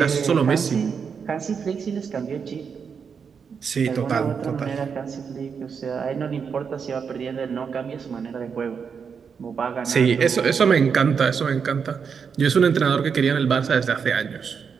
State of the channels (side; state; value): left; quieter; 6.3 dB